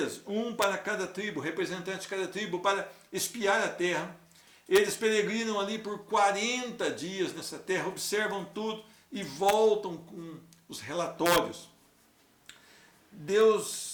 um para cada tribo, representante de cada tribo, para espiar a terra. Eles peregrinam ali por 40 dias nessa terra, observam tudo e voltam com os relatórios.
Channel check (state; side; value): identical; both; correlation 1.00